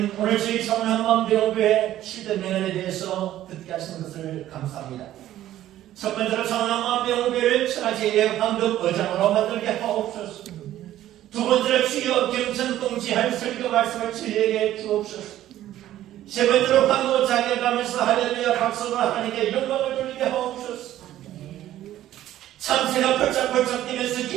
오늘 저희 청남만병교회 7대 명언에 대해서 듣게 하시는 것을 감사합니다. 첫 번째로 청남만병교회를 천하제일의 황금 의장으로 만들게 하옵소서. 두 번째로 주여 경천동지할 설교 말씀을 저희에게 주옵소서. 세 번째로 황금 자격하면서 할렐루야 박수로 하나님께 영광을 돌리게 하옵소서. 참새가 펄쩍펄쩍 뛰면서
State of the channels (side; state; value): left; quieter; 13.2 dB